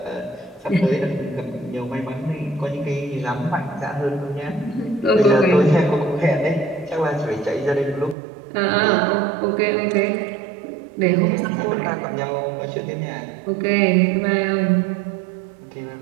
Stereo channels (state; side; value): drops out; left; at 8.2 s